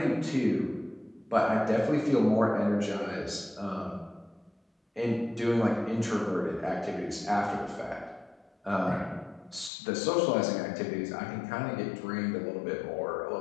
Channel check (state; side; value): drops out; right; at 9.7 s